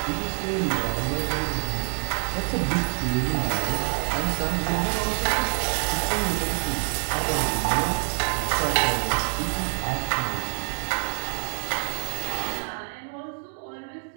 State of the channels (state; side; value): silent; left; 59 dB below the other